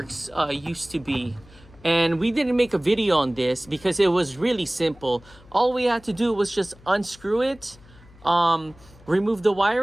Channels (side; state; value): left; noise; hum, 24 dB below the sound